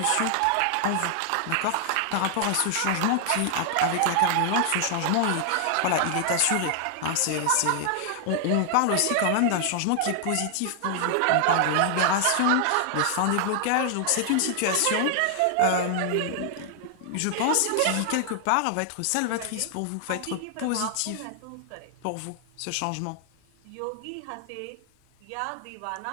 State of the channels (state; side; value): different; both; correlation 0.00